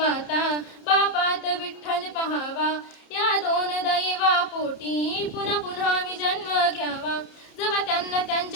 बापात विठ्ठल पहावा, या दोन दैवा पोटी पुन्हा पुन्हा मी जन्म घ्यावा. जेव्हा त्यांना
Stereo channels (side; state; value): right; late; 30 ms